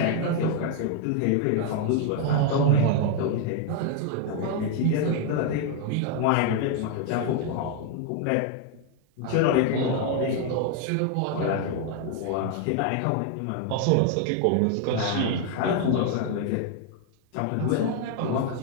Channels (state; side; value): different; both; correlation 0.00